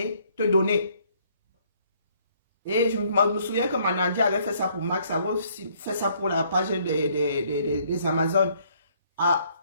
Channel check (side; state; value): both; inverted; correlation -0.65